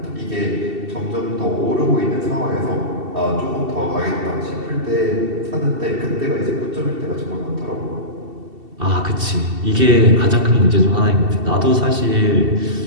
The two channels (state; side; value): late; left; 2.7 ms